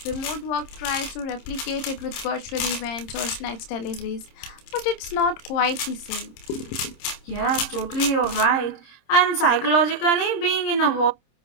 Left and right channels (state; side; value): late; right; 26 ms